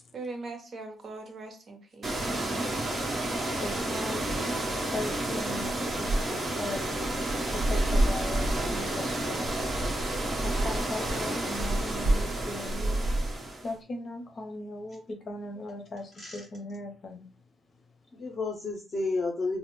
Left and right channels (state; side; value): normal; both; correlation 0.85